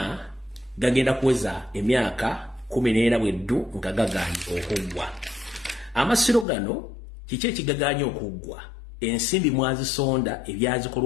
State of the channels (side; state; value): right; drops out; at 6.5 s